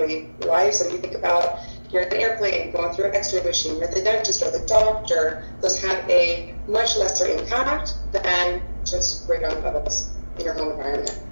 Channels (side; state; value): both; inverted; correlation -1.00